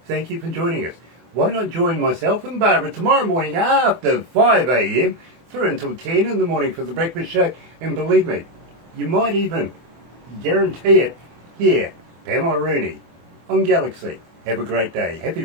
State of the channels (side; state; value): left; late; 24 ms